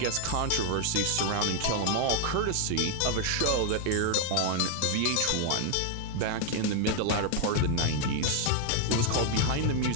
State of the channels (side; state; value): both; different; correlation 0.00